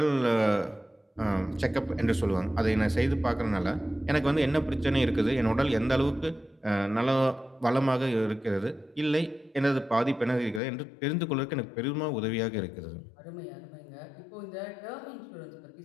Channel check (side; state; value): right; drops out; at 10.6 s